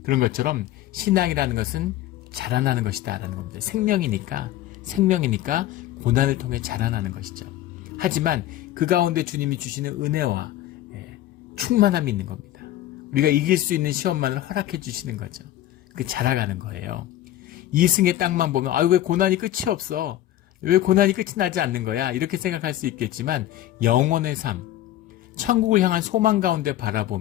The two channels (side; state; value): right; quieter; 13.6 dB